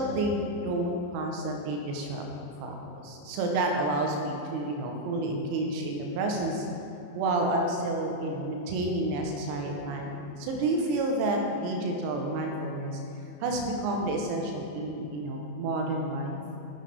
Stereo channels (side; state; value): left; late; 34 ms